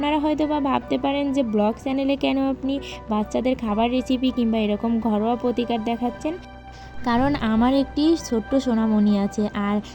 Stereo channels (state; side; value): identical; both; correlation 1.00